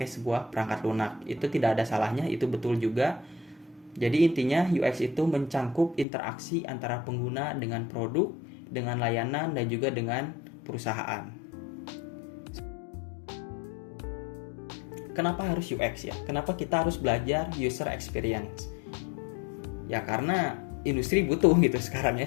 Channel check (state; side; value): drops out; right; at 6.1 s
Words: sebuah perangkat lunak. Itu tidak ada salahnya, itu betul juga. Jadi intinya UX itu mencangkup interaksi antara pengguna dengan produk, dengan layanan dan juga dengan perusahaan. Kenapa harus UX ya? Kenapa kita harus belajar user experience? Ya karena industri butuh gitu sekarang ya,